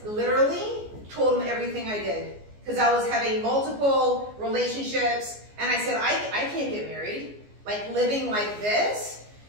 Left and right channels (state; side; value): late; left; 14 ms